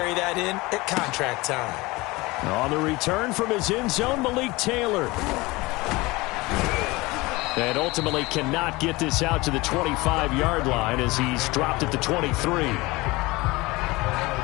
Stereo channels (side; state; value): right; quieter; 22.2 dB